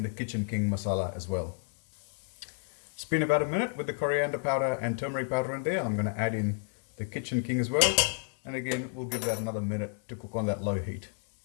the kitchen king masala as well. It's been about 1 minute with the coriander powder and turmeric powder in there. I'm going to add in the kitchen king as well. And again, we'll give that another minute to cook on that low heat.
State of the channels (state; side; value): silent; right; digital silence